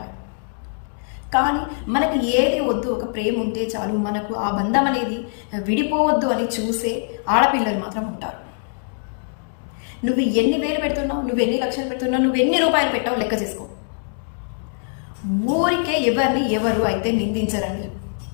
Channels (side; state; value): right; silent; digital silence